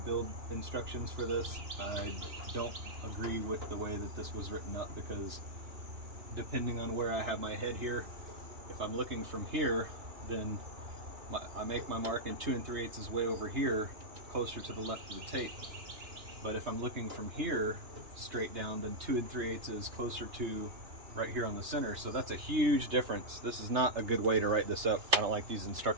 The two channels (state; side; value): late; left; 2.9 ms